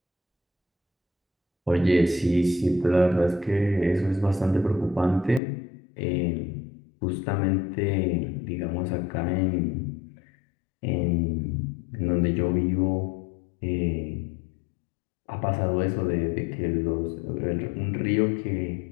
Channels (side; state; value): right; drops out; at 5.4 s